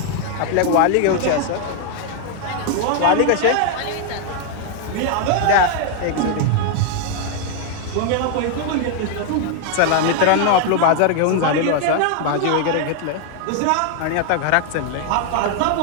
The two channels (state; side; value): different; both; correlation 0.00